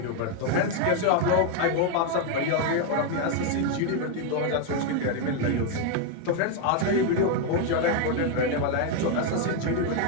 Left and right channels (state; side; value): different; both; correlation 0.01